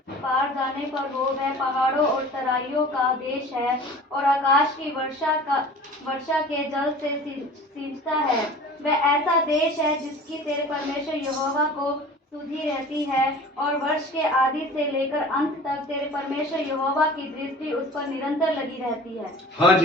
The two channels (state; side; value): normal; both; correlation 0.42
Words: पार जाने पर हो, वह पहाड़ों और तराइयों का देश है और आकाश की वर्षा के जल से सींचता है। वह ऐसा देश है जिसकी तेरे परमेश्वर यहोवा को सुधि रहती है और वर्ष के आदि से लेकर अंत तक तेरे परमेश्वर यहोवा की दृष्टि उस पर निरंतर लगी रहती है। हाँ